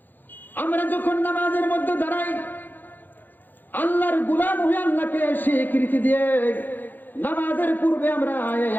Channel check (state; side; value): late; right; 0.088 ms